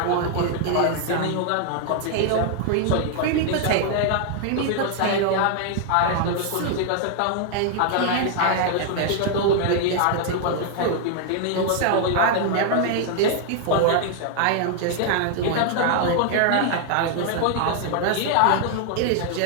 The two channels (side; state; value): both; different; correlation 0.00